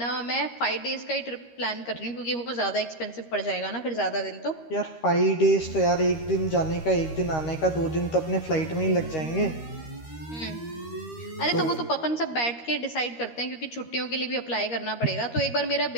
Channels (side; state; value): right; late; 13 ms